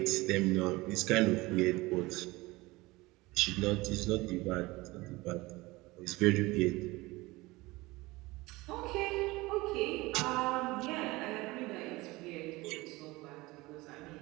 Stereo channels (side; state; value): left; quieter; 21.3 dB